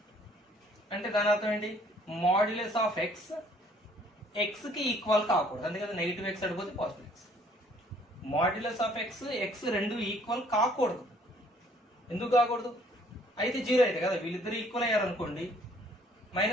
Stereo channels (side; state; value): both; normal; correlation 0.61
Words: అంటే దాని అర్థం ఏంటి? మాడ్యులస్ ఆఫ్ ఎక్స్ ఎక్స్ కి ఈక్వల్ కాకూడదు. అందుకని నెగిటివ్ ఎక్స్ అడిపోతే positive x. Modulus of x రెండు ఈక్వల్ కాకూడదు. ఎందుకు కాకూడదు? అయితే 0 అయితే కదా, వీళ్ళిద్దరు ఈక్వల్ అయ్యారు అనుకోండి,